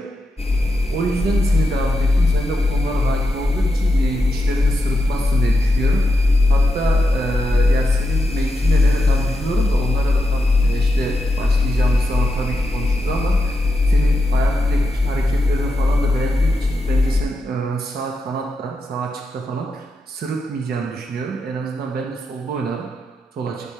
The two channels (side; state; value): both; normal; correlation 0.86